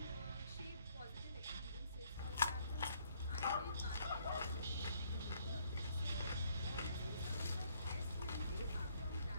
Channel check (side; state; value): both; inverted; correlation -0.66